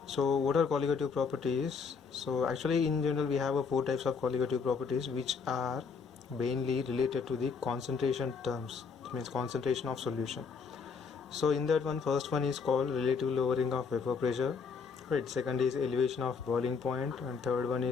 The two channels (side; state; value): right; quieter; 5.5 dB